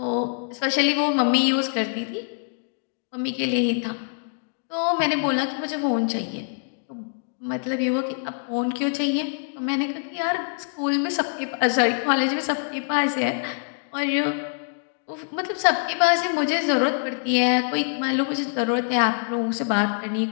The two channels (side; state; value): right; silent; 60 dB below the other